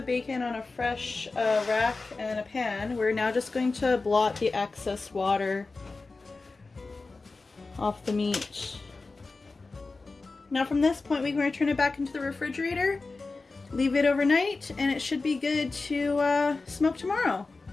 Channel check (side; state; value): right; quieter; 3.7 dB